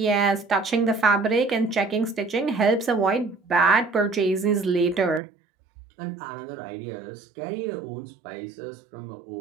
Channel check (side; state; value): left; drops out; at 5.2 s